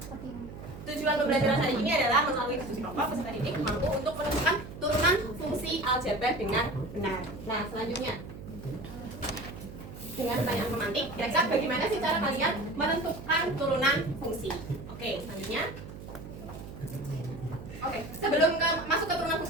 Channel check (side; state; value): right; noise; hum, 13 dB below the sound